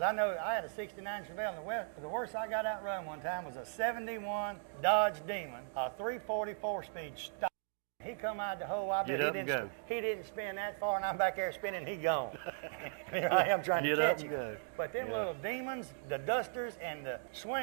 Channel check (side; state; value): left; silent; digital silence